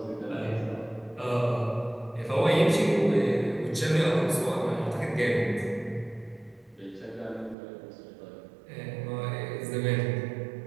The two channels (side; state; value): left; drops out; at 7.6 s